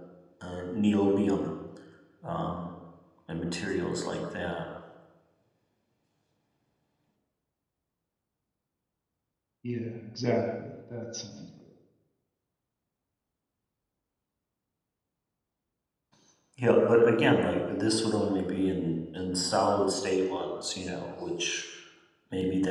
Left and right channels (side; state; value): both; identical; correlation 1.00